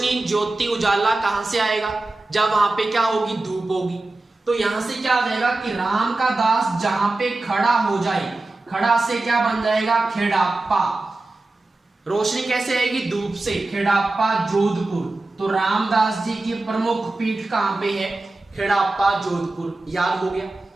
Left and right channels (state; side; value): quieter; left; 3.0 dB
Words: ज्योति, उजाला कहां से आएगा? जब वहां पे क्या होगी? धूप होगी। तो यहां से क्या आ जाएगा कि राम का दास जहां पे खड़ा हो जाए, खड़ा से क्या बन जाएगा? खेड़ाप्पा। रोशनी कैसे आएगी? धूप से। खेड़ाप्पा जोधपुर। तो रामदास जी की प्रमुख पीठ कहां पे है? खेड़ाप्पा जोधपुर। याद हो गया।